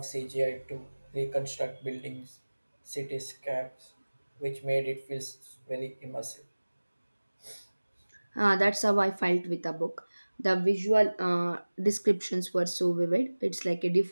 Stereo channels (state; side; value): inverted; both; correlation -1.00